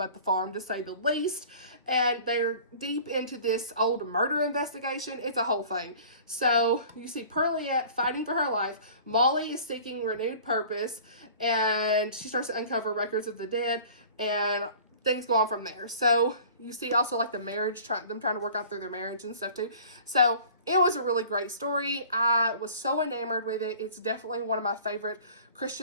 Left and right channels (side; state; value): both; inverted; correlation -0.46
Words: the farm, to say the least, and they're deep into this old murder investigation. It's a whole thing. So you see Pearliette fighting for her life. Molly is seeking renewed purpose, and she starts to uncover records of the dead, and things go on from there. So you see also like the marriage, them trying to work out through their marriage and stuff too. So it was a really great story. I was so enamored with it. It's definitely one of my favorite